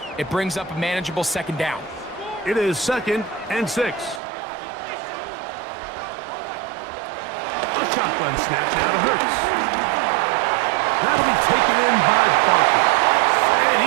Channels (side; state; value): left; drops out; at 4.2 s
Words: it brings up a manageable 2nd down. It is 2nd and 6. A shotgun snap now to Hurts. That'll be taken in by Barkley. And